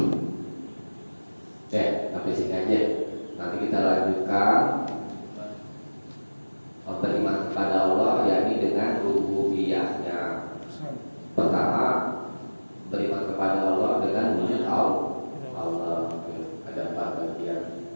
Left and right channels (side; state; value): both; inverted; correlation -1.00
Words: Ya. Sampai sini aja. Nanti kita lanjutkan beriman kepada Allah, yakni dengan rububiyahnya. Pertama, beriman kepada Allah dengan wujud Allah. Ada 4 bagian.